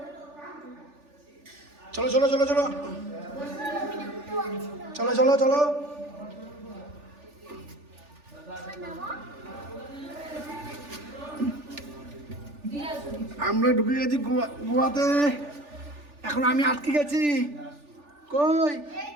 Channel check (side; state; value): left; late; 3.4 ms